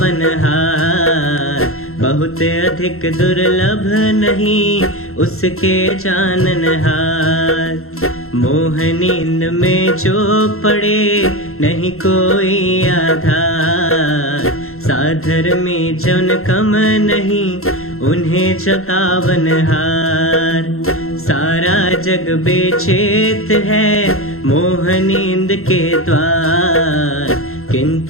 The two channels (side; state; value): right; late; 0.62 ms